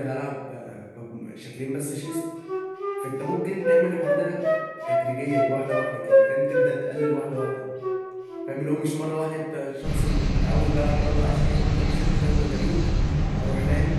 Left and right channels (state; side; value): identical; both; correlation 1.00